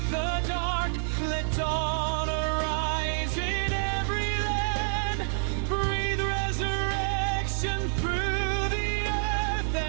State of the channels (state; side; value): silent; left; 57 dB below the other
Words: the dark, let dawn arise in every land. Breathe resurrection through the earth